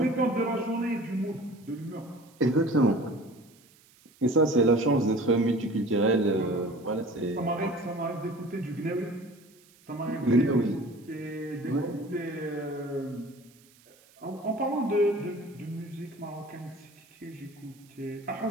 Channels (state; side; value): noise; right; hiss, 28 dB below the sound